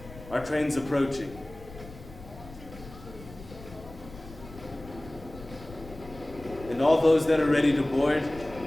Our train's approaching. And all those that are ready to board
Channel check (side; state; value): left; noise; rumble, 17 dB below the sound